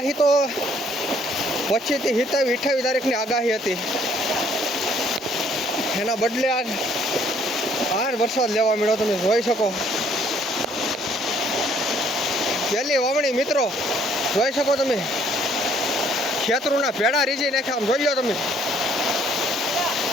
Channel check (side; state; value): both; normal; correlation 0.63